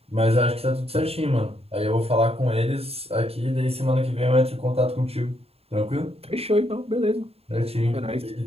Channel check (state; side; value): late; left; 0.29 ms